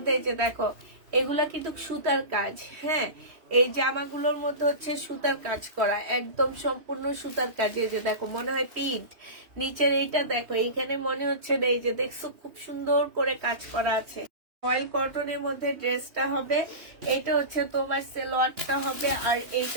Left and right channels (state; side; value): late; left; 3.1 ms